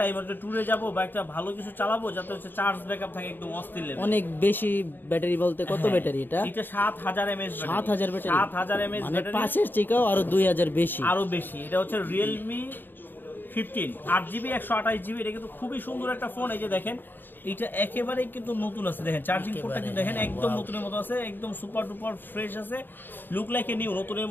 একটা ট্যুরে যাব বা একটা ভালো কিছু চালাবো, যাতে হচ্ছে চার্জ ব্যাকআপ থাকে একদম অস্থির লেভেল। অনেক বেশি ব্যাটারি বলতে কত ব্যাটারি এটা? এটা 7000 mAh। 7000 ব্যাটারি? 7000 mAh মানে ব্যাটারি, 5 এর থেকেও আরো 2000 বেশি। আরো বেশি। এটা হচ্ছে রিয়েলমি 15 8GB 128GB। এটা কিন্তু খুবই সুন্দর একটা ফোন। এই যে দেখেন এটা একেবারেই কিন্তু নতুন আছে, দেখেন চার্জিং পোর্টটা কিন্তু দেখেন একদম নতুনের মতো আছে, একদম সুপার ডুপার ফ্রেশ আছে, লুক লাইক এ নিউ, নতুনের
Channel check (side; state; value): right; late; 0.094 ms